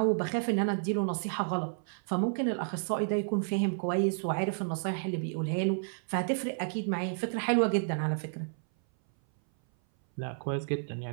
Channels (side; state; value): left; silent; 57 dB below the other